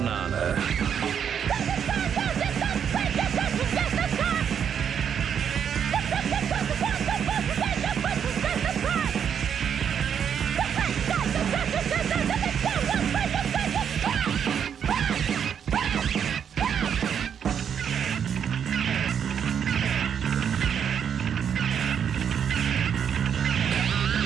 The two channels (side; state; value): left; quieter; 8.0 dB